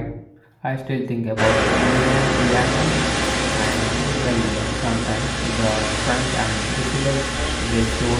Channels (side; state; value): both; identical; correlation 1.00